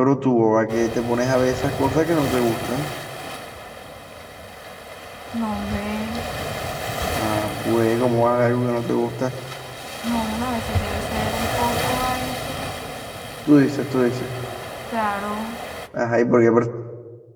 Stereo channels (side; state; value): both; identical; correlation 1.00